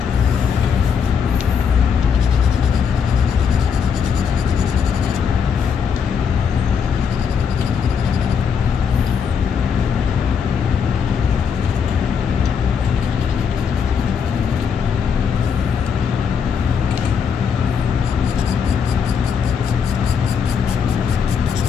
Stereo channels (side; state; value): right; quieter; 6.7 dB